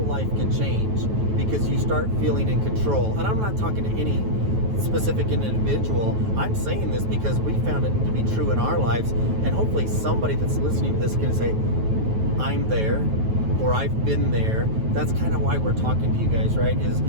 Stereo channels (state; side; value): late; left; 9.3 ms